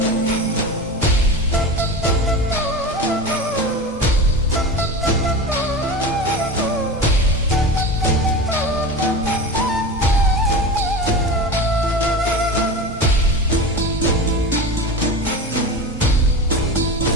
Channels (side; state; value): both; normal; correlation 0.29